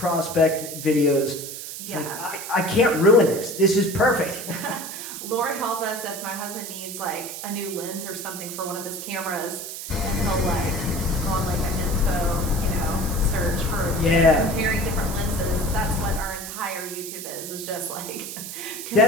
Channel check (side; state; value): right; noise; hiss, 8 dB below the sound